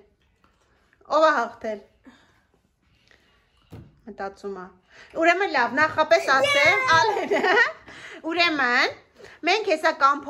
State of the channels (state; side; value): identical; both; correlation 1.00